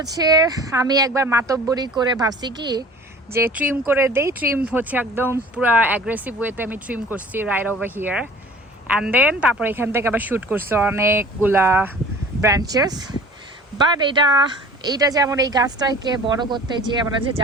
আমি একবার মাতব্বরি করে ভাবছি কি যে ট্রিম করে দেই, ট্রিম হচ্ছে একদম পুরো অ্যাগ্রেসিভ ওয়েতে আমি ট্রিম করছি right over here, and then তারপর এখান থেকে আবার শ্যুট করছি অনেকগুলা ব্রাঞ্চেস। বাট এইটা যেমন এই গাছটাকে বড় করতে যে আমরা যে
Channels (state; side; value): normal; both; correlation 0.45